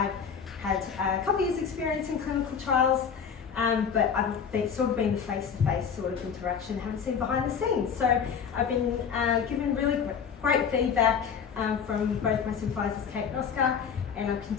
had a couple years experience in clinical trials, but I've sort of been the face-to-face sort of interaction, haven't seen behind the scenes. So I've been given really great feedback from both my supervisors, Kate and Oscar, and I've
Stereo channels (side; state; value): right; quieter; 6.9 dB